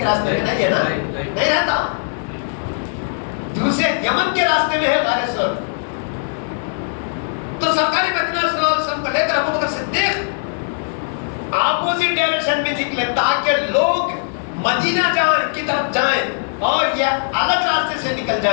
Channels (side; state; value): right; silent; 66 dB below the other